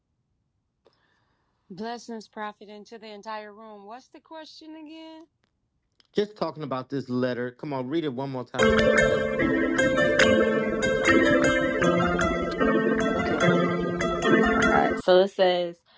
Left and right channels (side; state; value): both; identical; correlation 1.00